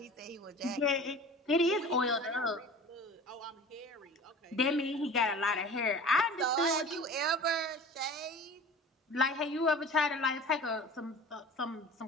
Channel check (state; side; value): normal; both; correlation 0.39